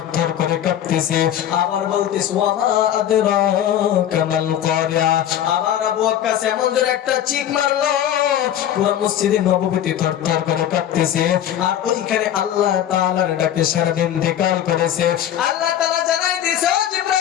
করে কাঁপতেছে। আবার বলতেছে, ওয়া মা আদরাকা মাল কারিয়া। আবার আবু ওয়াক্কাস এমন যে একটা চিক মারলো, পুরো মসজিদে নববীতে থরথর করে কাঁপতেছে। আর ওইখানে আল্লাহ তাআলার ডাকে সারাদিন ধিক্কার করেছে। আল্লাহ তাআলা জানাই দিয়েছে, ও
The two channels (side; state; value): right; quieter; 10.9 dB